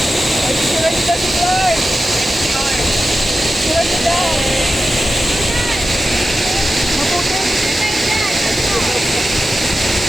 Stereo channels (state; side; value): normal; both; correlation 0.92